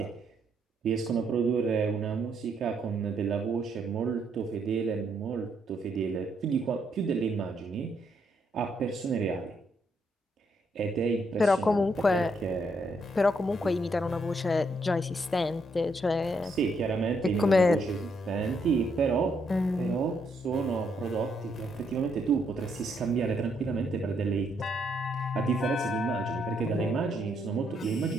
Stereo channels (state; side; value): normal; both; correlation 0.75